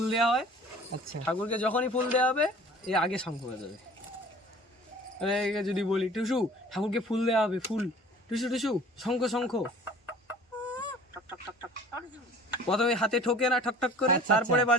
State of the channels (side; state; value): both; normal; correlation 0.47